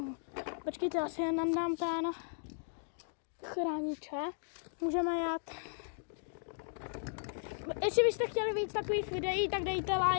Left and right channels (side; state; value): right; silent; digital silence